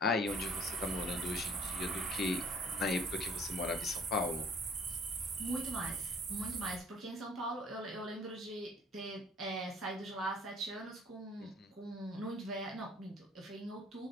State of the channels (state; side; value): normal; both; correlation 0.55